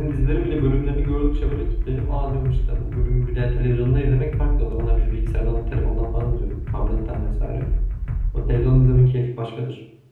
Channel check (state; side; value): identical; both; correlation 1.00